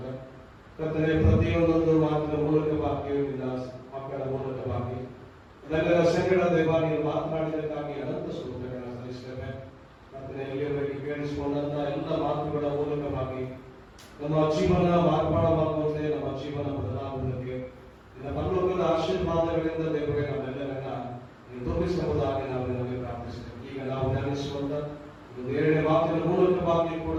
ಕರ್ತನೆ, ಪ್ರತಿಯೊಂದೊಂದು ಮಾತಿನ ಮೂಲಕವಾಗಿ ನಿನ್ನ ಮಕ್ಕಳ ಮೂಲಕವಾಗಿ ಅದೆಲ್ಲರ ಸಂಗಡ ದೇವ ನೀನು ಮಾತನಾಡಿದಕ್ಕಾಗಿ ಅನಂತ ಸ್ತೋತ್ರಗಳನ್ನು ಸಲ್ಲಿಸುತ್ತೇವೆ. ಕರ್ತನೆ, ಇಲ್ಲಿಯವರೆಗೆ ಕೇಳಿಸಿಕೊಂಡಂತಹ ಎಲ್ಲ ಮಾತುಗಳ ಮೂಲಕವಾಗಿ ನಮ್ಮ ಜೀವನ ಮಾರ್ಪಾಡವಾಗುವಂತೆ, ನಮ್ಮ ಜೀವನ ಬದಲಾಗುವುದಕ್ಕೆ ನಿನ್ನ ಪರಲೋಕದ ಆಶೀರ್ವಾದಗಳಿಂದ ದೇವರೇ ನಮ್ಮೆಲ್ಲರನ್ನ ನೀನು ತೋರಿಸಬಹುದಾಗಿ ನಾವು ನಿಮಗೆ ಪ್ರಾರ್ಥಿಸುತ್ತೇವೆ. ಈಗ ನಾವು ಧ್ಯಾನಿಸುವಂತ ಒಂದು 2ನೇ ಮಾತಿನ ಮೂಲಕವಾಗಿ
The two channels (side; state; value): both; identical; correlation 1.00